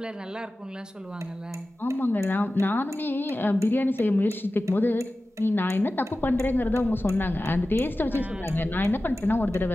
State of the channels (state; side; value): normal; both; correlation 0.95